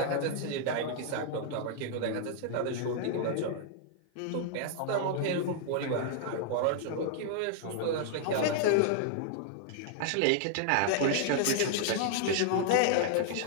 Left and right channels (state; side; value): different; both; correlation -0.01